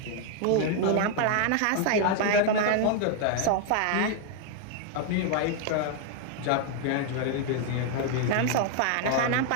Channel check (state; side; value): different; both; correlation 0.00